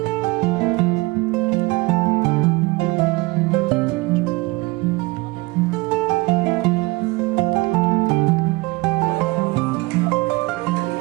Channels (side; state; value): left; quieter; 23.8 dB